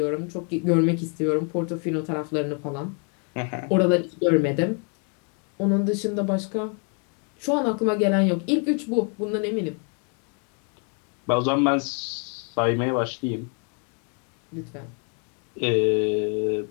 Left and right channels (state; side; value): quieter; right; 39.8 dB